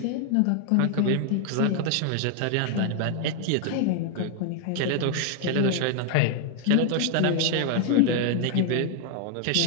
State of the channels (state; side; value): different; both; correlation 0.00